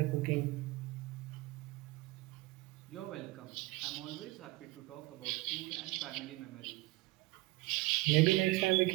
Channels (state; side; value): quieter; left; 21.8 dB